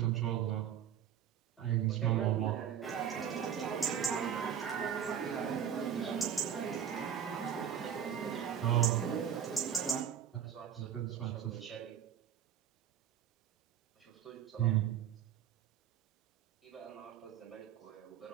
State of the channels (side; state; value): left; quieter; 9.0 dB